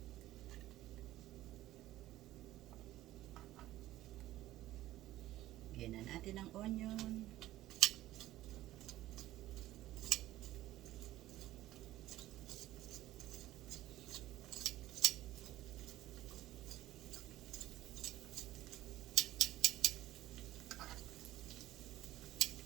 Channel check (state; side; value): quieter; left; 15.2 dB